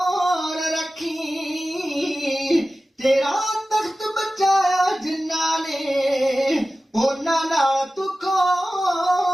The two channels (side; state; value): both; normal; correlation 0.95